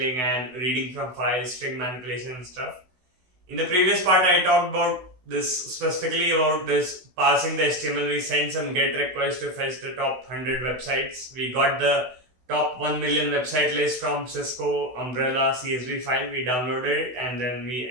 and reading from files, string manipulation and stuff. In the previous part I talked about this specifically about this parsing the HTML. We sent some GET requests to fetch the top 100 websites. We got the top 1 million website list from Cisco Umbrella CSV file. We downloaded it and then we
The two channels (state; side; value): late; left; 16 ms